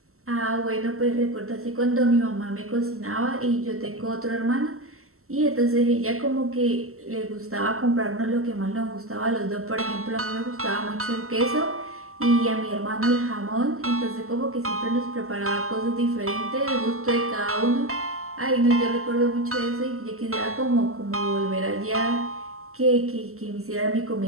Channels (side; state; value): left; late; 0.63 ms